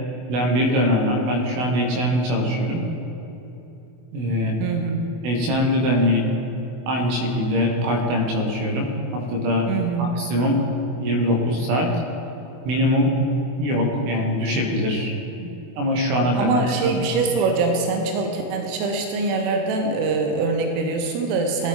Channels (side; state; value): left; late; 24 ms